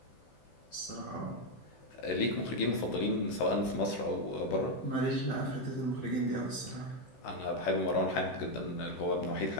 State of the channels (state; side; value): late; right; 16 ms